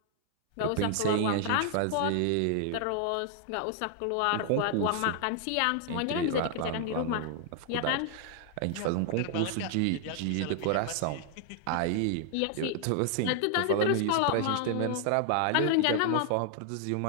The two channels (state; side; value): different; both; correlation 0.00